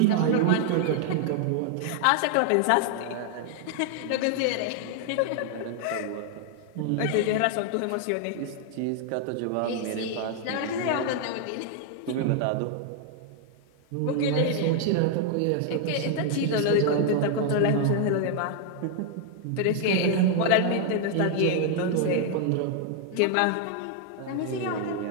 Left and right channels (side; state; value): both; different; correlation 0.00